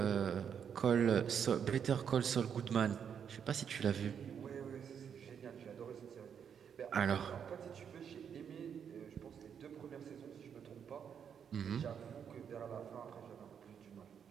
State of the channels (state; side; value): quieter; left; 7.7 dB